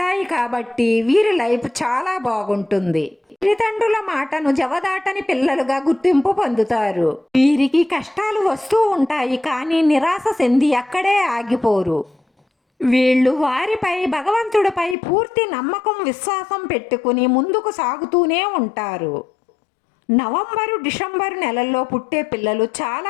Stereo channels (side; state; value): right; drops out; at 15.0 s